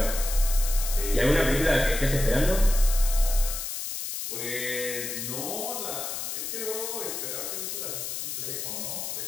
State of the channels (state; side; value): noise; left; hiss, 5 dB below the sound